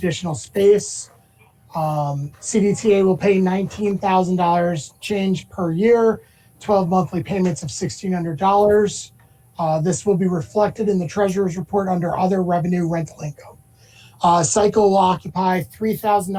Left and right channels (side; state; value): both; identical; correlation 1.00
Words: space. CDTA will pay $19,000 change per year, 12 monthly payments of $1,600. This will be reflected in the Treasurer's Report under other revenue rental income. Cycle will occupy